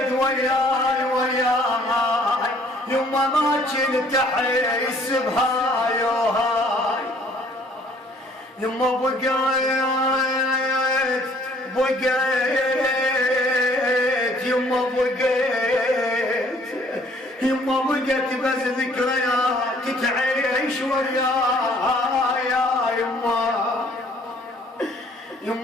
وياي وياي، يما ما كنت احس بهاي وهاي، يما بقيت يما بقيت بس ذكريات تعيش وياي يا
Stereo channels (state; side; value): normal; both; correlation 0.59